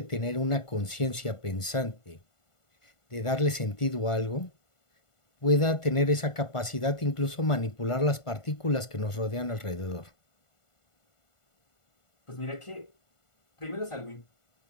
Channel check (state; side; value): late; right; 1.4 ms